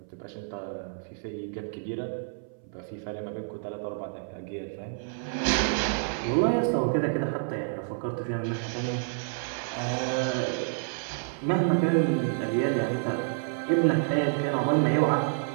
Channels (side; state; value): left; silent; 59 dB below the other